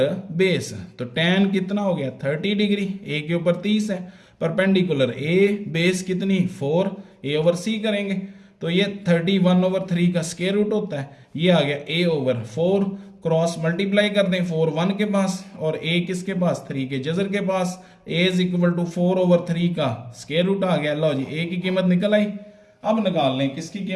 base. तो tan कितना हो गया 30 डिग्री, ए के ऊपर 30 है, परपेंडिकुलर ए बेस कितनी 4, ए ओवर सी करेंगे तो ये 31/3 का स्क्वायर रूट होता है। ये आ गया a ओवर 4, क्रॉस मल्टीप्लाई कर दें 4 1 के पास और a किसके पास 3 के जजर के पास, a इज इक्वल टू 4/3 का स्क्वायर रूट आ गया। लो जी a की कीमत निकल आई। अब निकाल लें किसकी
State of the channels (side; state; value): both; identical; correlation 1.00